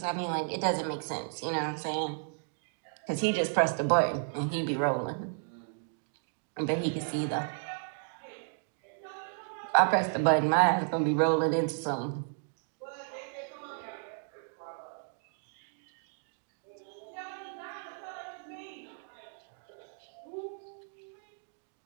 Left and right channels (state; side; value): silent; left; 55 dB below the other